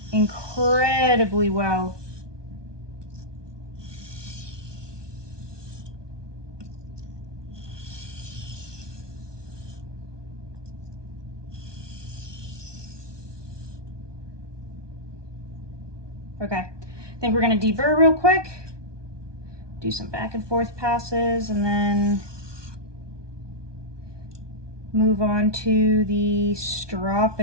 incredibly well. Okay, I think we're gonna deburr real quick, do some back and forth passes, and then move on to the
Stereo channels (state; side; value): late; left; 1.2 ms